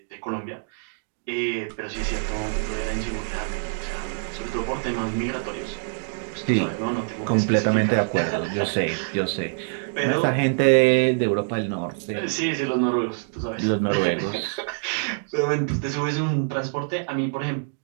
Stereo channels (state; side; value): silent; left; digital silence